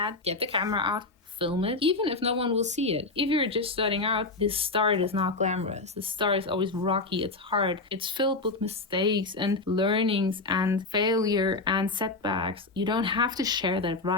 get the camera out, film it, even if no one will see it. If you're just starting out, this start is not glamorous. The start is always rocky, it's hard, it's filled with mistakes and learnings and failure and setbacks. You don't have to share that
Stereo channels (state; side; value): quieter; right; 3.4 dB